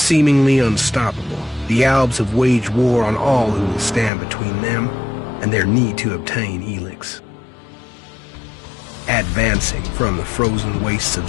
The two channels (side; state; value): right; drops out; at 4.1 s